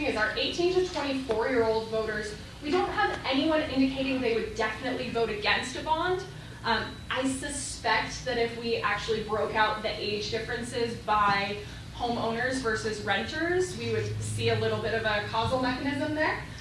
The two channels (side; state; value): both; identical; correlation 1.00